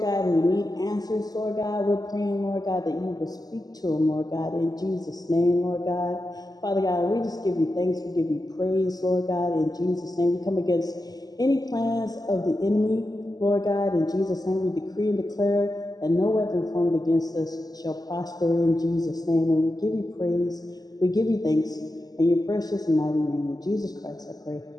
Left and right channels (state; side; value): late; right; 0.18 ms